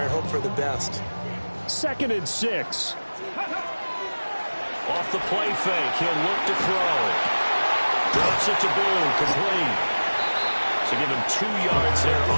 and hope for the best. Second and 6. Off the play fake, he'll look to throw. Drops it to Boone, complete. So give him 2 yards there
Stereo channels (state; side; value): inverted; both; correlation -1.00